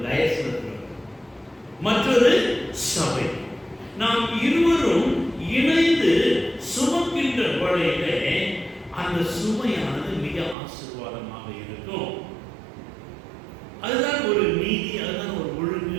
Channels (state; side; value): drops out; left; at 10.6 s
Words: மற்றொரு சபை. நாம் இருவரும் இணைந்து சுமக்கின்ற வழியிலே அந்த சுமையானது மிக ஆசீர்வாதமாக இருக்கும். அதுதான் ஒரு நீதி, அதுதான் ஒரு